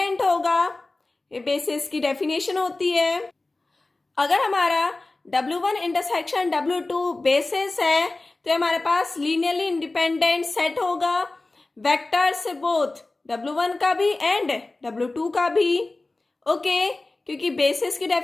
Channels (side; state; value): right; quieter; 3.1 dB